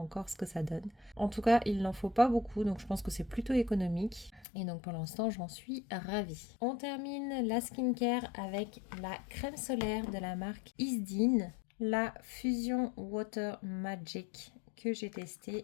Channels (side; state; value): right; drops out; at 4.5 s